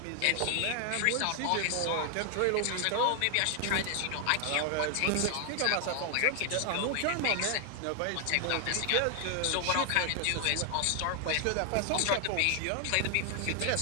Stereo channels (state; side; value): different; both; correlation 0.00